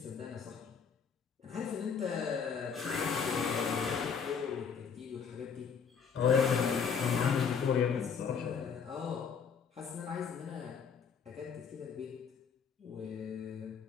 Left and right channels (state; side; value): quieter; right; 6.4 dB